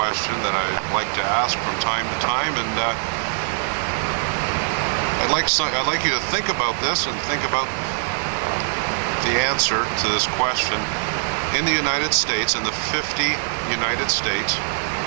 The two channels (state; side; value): silent; left; digital silence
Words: that I like to ask from time to time, and I'd like you to think about this and think about the answer to this question. In the United States, in the 50 United States,